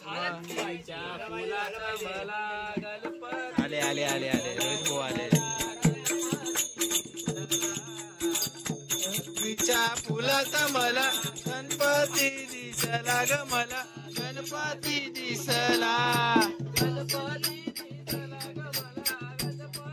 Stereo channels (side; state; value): both; identical; correlation 1.00